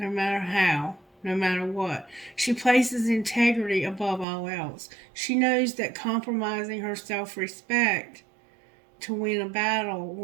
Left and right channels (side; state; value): left; drops out; at 4.2 s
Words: matter how, no matter what. She places integrity above all else. She knows that compromising her self-respect to win a battle